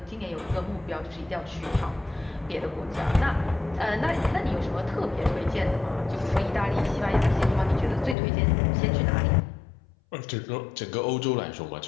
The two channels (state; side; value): drops out; right; at 8.2 s